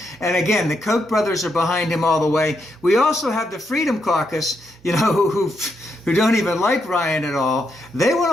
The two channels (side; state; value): both; normal; correlation 0.80